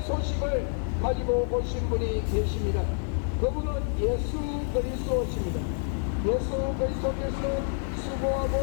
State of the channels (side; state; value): right; silent; digital silence